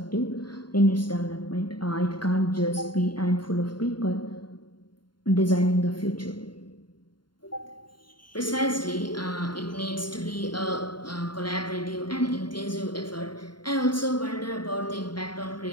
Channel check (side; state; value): right; late; 0.72 ms